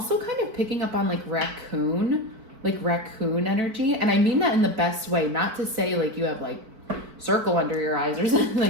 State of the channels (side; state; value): left; late; 4.7 ms